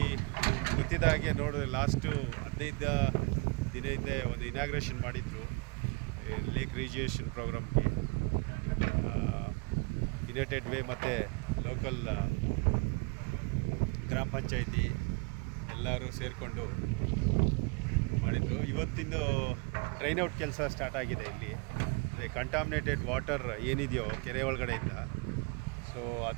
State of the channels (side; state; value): left; quieter; 31.3 dB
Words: ಗೊತ್ತಿದ್ದ ಹಾಗೆ ನೋಡಿದ್ರೆ ಲಾಸ್ಟು 15 ದಿನ ಹಿಂದೆ ಒಂದು ಇನಾಗ್ರೇಷನ್ ಮಾಡಿದ್ರು ಲೇಕ್ ರಿಜಿಯೇಷನ್ ಪ್ರೋಗ್ರಾಮ್ಗೆ. ಯುನೈಟೆಡ್ ವೇ ಮತ್ತು ಲೋಕಲ್ ಗ್ರಾಮ ಪಂಚಾಯಿತಿ ಎಲ್ಲರೂ ಸೇರಿಕೊಂಡು ಮಾಡಿದರು. ಇವತ್ತಿಂದು ಟ್ರೈನ್ ಔಟ್ ಕೆಲಸ ಸ್ಟಾರ್ಟ್ ಆಗಿದೆ ಇಲ್ಲಿ. ಅಂದರೆ ಕಂಟಾಮಿನೇಟೆಡ್ ವಾಟರ್ ಏನಿದೆಯೋ ಕೆರೆ ಒಳಗಡೆಯಿಂದ, ಸೊ